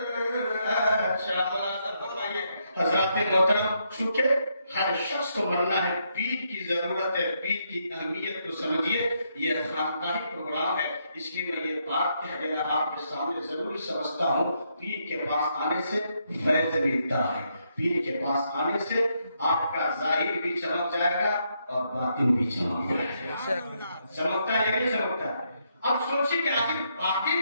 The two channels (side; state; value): both; inverted; correlation -0.77